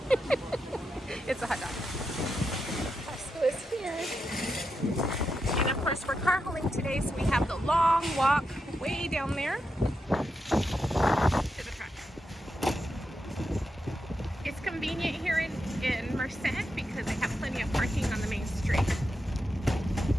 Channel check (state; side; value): normal; both; correlation 0.86